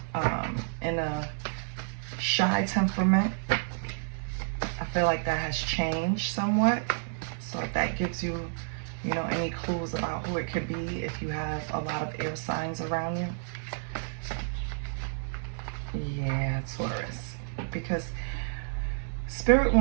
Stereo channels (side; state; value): left; silent; 58 dB below the other